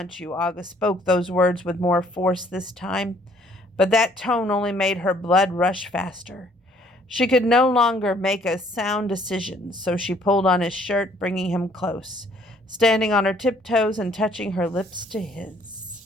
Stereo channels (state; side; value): normal; both; correlation 0.61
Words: you. August spoke those words with more force this time, but that tone only made her blood rush faster. She could no longer make a sound decision, so she pulled on his shirt, bringing him close, standing on her tiptoes and touching her lips to